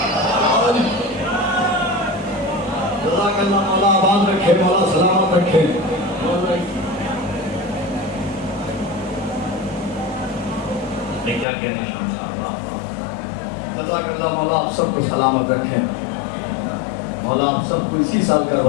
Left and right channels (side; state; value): right; drops out; at 11.5 s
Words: مولا آباد رکھے مولا سلامت رکھے میں کیا کہنے شام صاحب جزاک اللہ مولا آپ سب کو سلامت رکھیں مولا آپ سب کو اسی سال